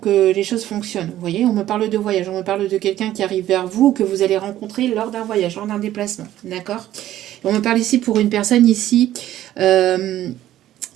les choses fonctionnent. Vous voyez, on me parle de voyage, on me parle de quelqu'un qui arrive vers vous, que vous allez rencontrer lors d'un voyage, lors d'un déplacement. D'accord ? On me parle ici pour une personne ici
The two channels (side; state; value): left; quieter; 13.2 dB